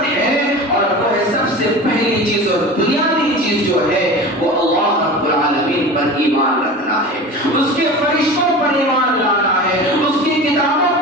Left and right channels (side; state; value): both; normal; correlation 0.33